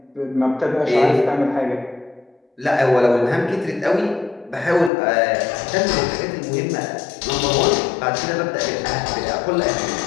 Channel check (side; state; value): right; drops out; at 4.9 s